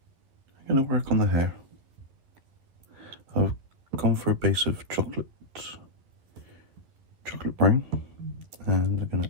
I'm going to work on the hair. I've gone for a base of chocolate brown, and I'm going to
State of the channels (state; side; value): late; left; 11 ms